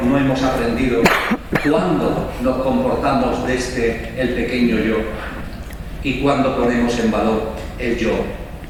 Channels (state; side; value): identical; both; correlation 1.00